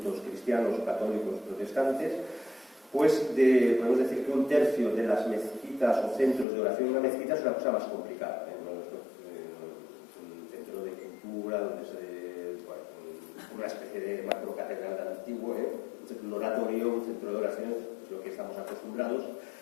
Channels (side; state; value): right; drops out; at 6.5 s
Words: cristianos, católicos, protestantes. Pues podemos decir que un tercio de las mezquitas o centros de oración en una mezquita es una cosa más complicada, ¿no? Es un centro de cultura donde una especie de macrocatedral antiguo, un oratorio, un centro de oración, es lo que estamos acostumbrados,